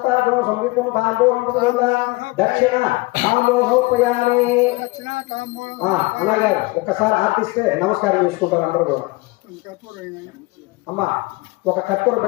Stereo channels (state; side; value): quieter; right; 23.6 dB